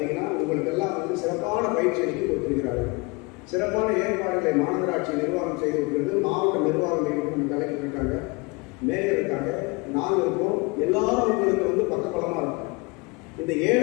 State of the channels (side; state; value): right; quieter; 27.3 dB